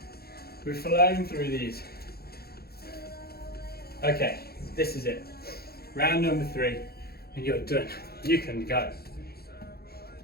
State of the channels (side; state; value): right; late; 0.46 ms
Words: We've flown through these. Okay, this is it. Round number 3, and you're done. You can go.